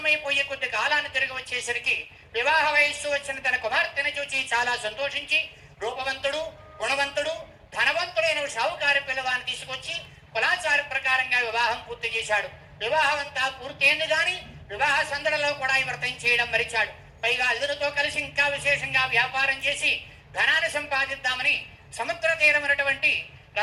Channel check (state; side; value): identical; both; correlation 1.00